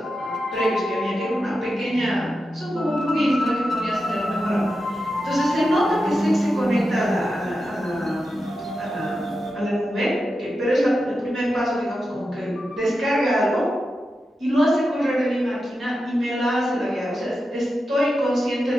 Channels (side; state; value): both; normal; correlation 0.90